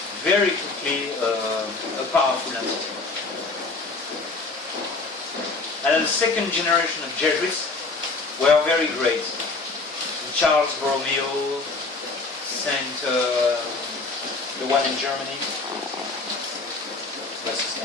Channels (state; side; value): quieter; right; 3.6 dB